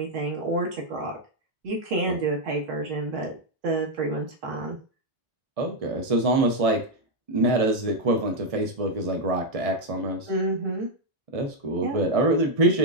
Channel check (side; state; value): left; late; 1.6 ms